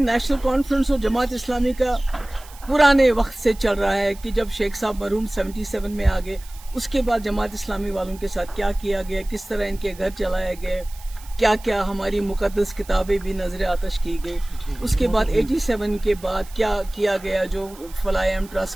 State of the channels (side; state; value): right; noise; hiss, 21 dB below the sound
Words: कॉन्फ्रेंस और जमात इस्लामी का पुराने वक्त से चल रहा है कि जब शेख साहब मरहूम 77 में आ गए, उसके बाद जमात इस्लामी वालों के साथ क्या किया गया, किस तरह इनके घर चलाए गए, क्या क्या हमारी मुकद्दस किताबें भी नजर आतश की गई, उसके बाद 87 के बाद क्या किया गया, जो फलायम